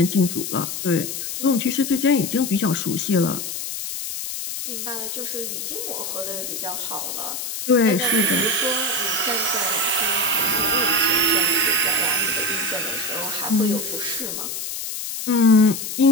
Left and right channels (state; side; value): noise; left; hiss, 5 dB below the sound